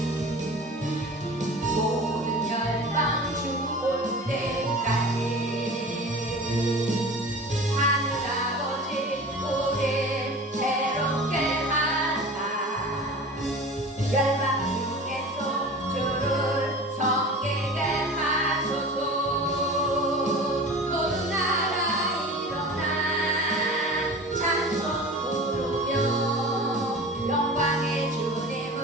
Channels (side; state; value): both; normal; correlation 0.37